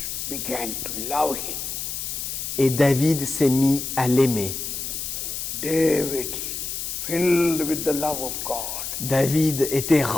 began to love him. Et David s'est mis à l'aimer. David, filled with the love of God, David était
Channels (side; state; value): left; noise; hiss, 5 dB below the sound